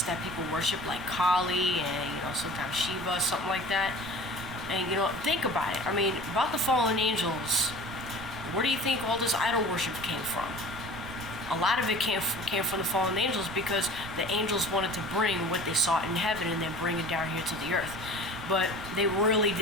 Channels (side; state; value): right; noise; rumble, 14 dB below the sound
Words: that people worship, like Kali and, you know, sometimes Shiva, something like that. And, you know, think about it. I mean, about the fallen angels, where do you think all this idol worship came from? A lot of it came from the fallen angels, because the angels wanted to bring what they saw in heaven and then bring it down here to the earth. But they really